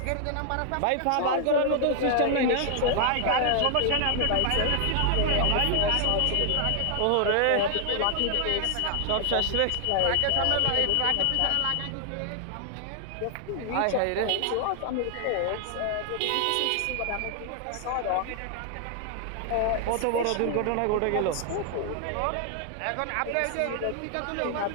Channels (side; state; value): both; different; correlation 0.00